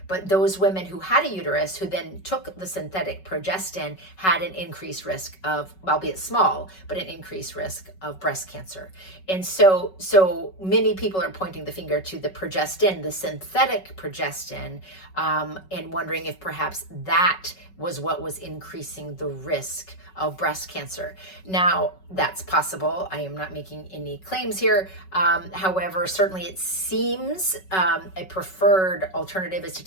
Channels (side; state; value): right; late; 5.3 ms